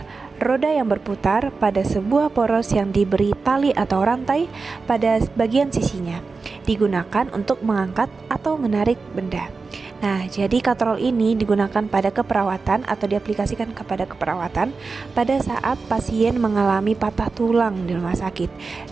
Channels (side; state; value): left; quieter; 4.3 dB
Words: roda yang berputar pada sebuah poros yang diberi tali atau rantai pada bagian sisinya, digunakan untuk mengangkat atau menarik benda. Nah, jadi katrol ini digunakan pada keperawatan atau diaplikasikan kepada keperawatan pada saat pasien mengalami patah tulang di rumah sakit.